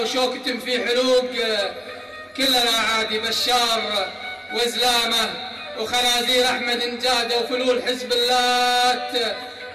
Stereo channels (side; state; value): both; identical; correlation 1.00